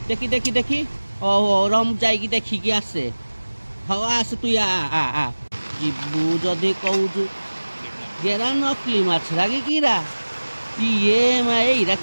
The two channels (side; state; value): both; inverted; correlation -1.00